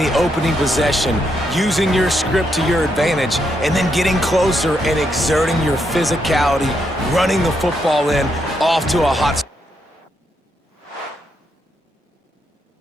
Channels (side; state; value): both; normal; correlation 0.79